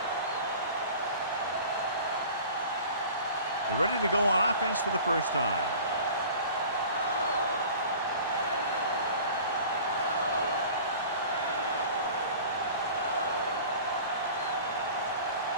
They're ready to go on offense for the first time.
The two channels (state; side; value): inverted; both; correlation -0.43